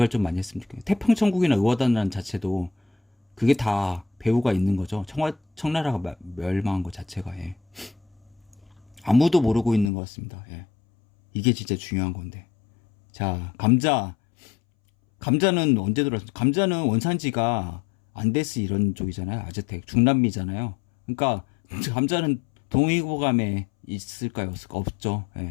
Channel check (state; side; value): drops out; right; at 9.9 s